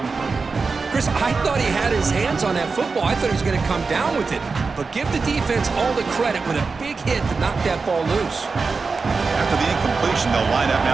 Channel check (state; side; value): quieter; left; 4.5 dB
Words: Chris, I thought he had his hands on that football. I thought he was going to come down with it. But give the defense all the credit with a big hit to knock that ball loose. After the incompletion, they'll line up